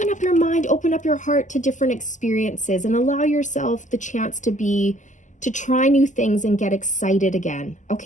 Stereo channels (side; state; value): right; late; 0.36 ms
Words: up your mind, open up your heart to different experiences and allow yourself the chance to try new things and get excited again.